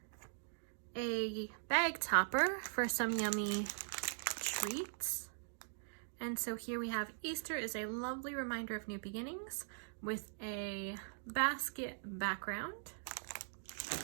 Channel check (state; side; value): silent; left; digital silence